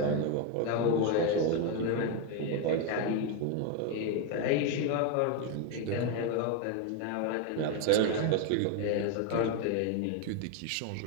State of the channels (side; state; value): both; different; correlation 0.02